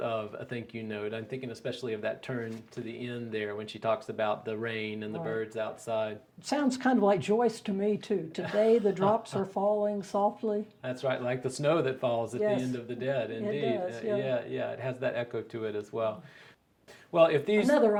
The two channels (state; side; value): identical; both; correlation 1.00